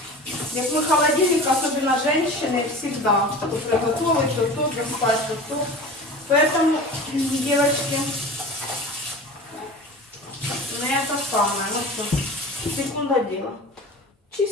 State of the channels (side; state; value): both; normal; correlation 0.37